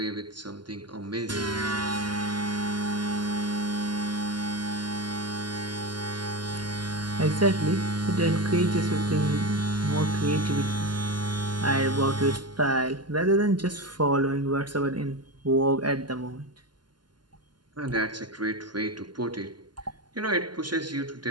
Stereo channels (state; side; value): late; left; 0.71 ms